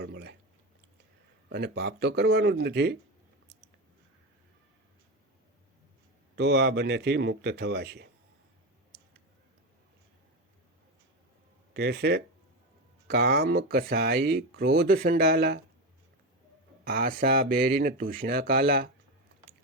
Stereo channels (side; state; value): both; normal; correlation 0.17